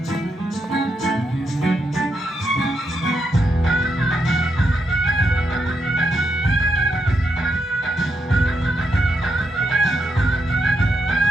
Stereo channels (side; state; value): both; normal; correlation 0.81